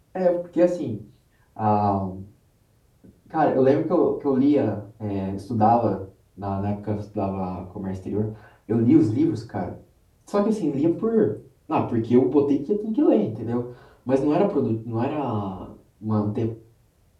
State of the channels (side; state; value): both; identical; correlation 1.00